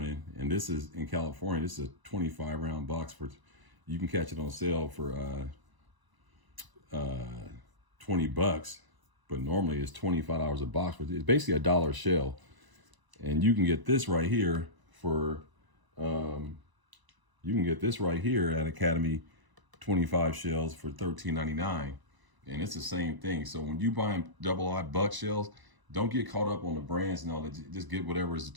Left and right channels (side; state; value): left; late; 1.0 ms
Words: and this is in California. This is a 25-round box for. You can catch it on sale for $20, but normally it's $25 a box. It's basically $1 a shell, and you can get this right here for. You can get this right here at Academy, 25 shells for $13.99, and it's the same thing. So when you buy double-aught buck shells, don't get caught up on the brands and all that. Just get whatever is the